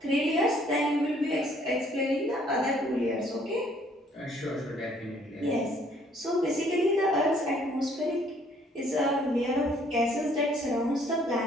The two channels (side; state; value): both; normal; correlation 0.62